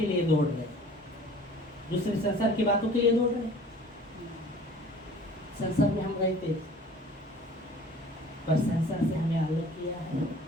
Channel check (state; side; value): normal; both; correlation 0.48